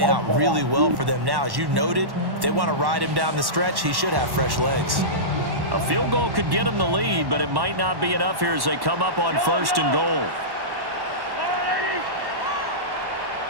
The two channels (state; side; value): late; left; 1.1 ms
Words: out really well for them now. As you noted, if they want to ride him down the stretch, he should have fresh legs. A field goal could get him the lead, but it might not be enough here as they come up on 1st and goal.